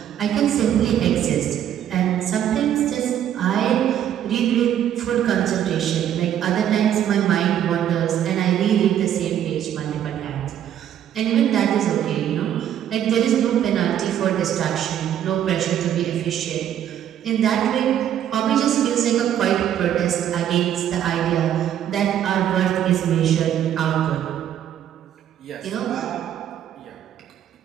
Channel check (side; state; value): left; quieter; 10.4 dB